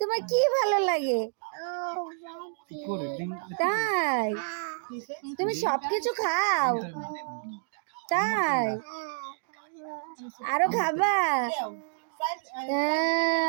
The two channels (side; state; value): left; silent; digital silence